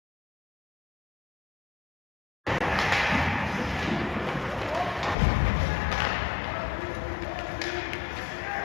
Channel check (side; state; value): right; drops out; at 5.2 s